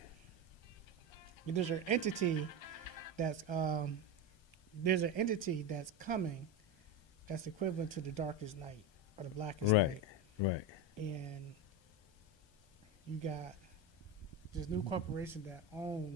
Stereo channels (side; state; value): right; late; 1.3 ms